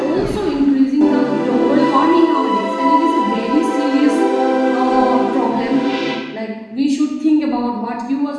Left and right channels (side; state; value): both; identical; correlation 1.00